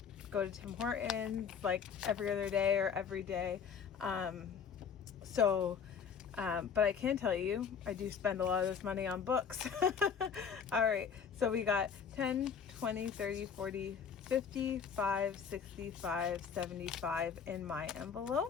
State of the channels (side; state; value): right; quieter; 6.8 dB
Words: go to Tim Hortons like every other day or every day. But I can tell you, I do spend a lot of this money on books. All right, so we got 10, 20, 30, 40, 55, 65, 75 in my